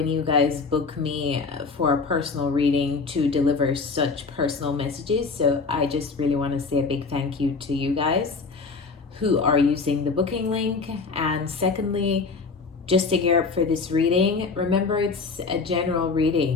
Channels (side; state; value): right; quieter; 4.5 dB